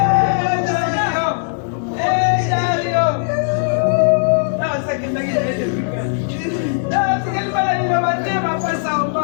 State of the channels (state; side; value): silent; right; digital silence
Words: Dario. Ah, ça que t'as dit. Ah, tu quel mal il va battre ma face en